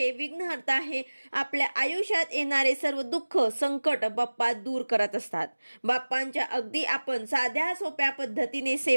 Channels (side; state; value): both; inverted; correlation -1.00